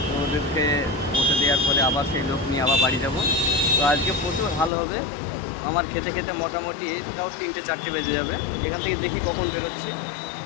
তো ওদেরকে বসে দেওয়ার পরে আবার সেই লোক নিয়ে আবার বাড়ি যাব। তো আজকে প্রচুর ভালো হবে আমার, খেতে খেতে মোটামুটি তাও 3-4 বেজে যাবে। এখান থেকে দেখি কখন বেরোচ্ছি।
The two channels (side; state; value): right; drops out; at 4.7 s